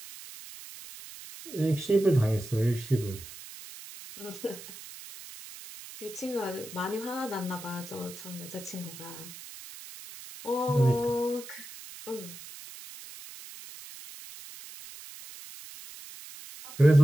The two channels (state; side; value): noise; right; hiss, 14 dB below the sound